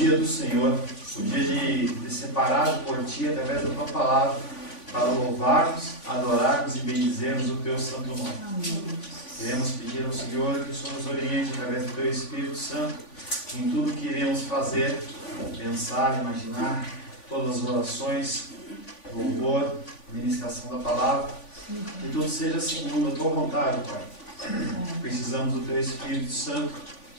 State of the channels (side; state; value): right; late; 3.5 ms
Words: do Senhor, o dia de separado por Ti, através da Tua palavra, para louvarmos, adorarmos e bendizermos o Teu santo nome. Amém. Queremos pedir ao Senhor que o Senhor nos oriente através do Teu Espírito Santo em tudo que iremos fazer, pensar, imaginar, todas as orações, louvor, ministração da palavra, que tudo seja segundo a Tua vontade, Pai. Precisamos do Teu Espírito Santo